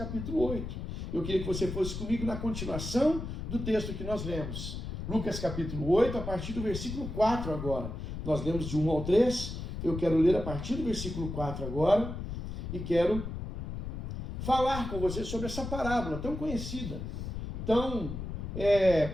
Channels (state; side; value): noise; left; rumble, 6 dB below the sound